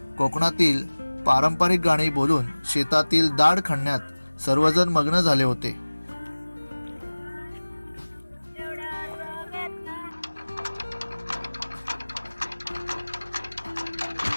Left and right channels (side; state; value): both; inverted; correlation -1.00